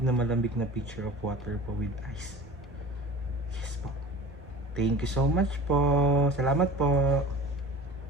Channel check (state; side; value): normal; both; correlation 0.38